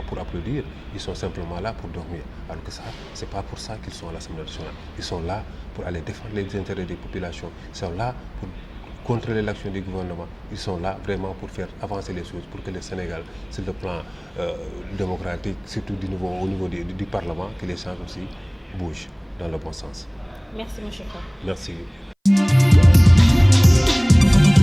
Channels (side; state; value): both; identical; correlation 1.00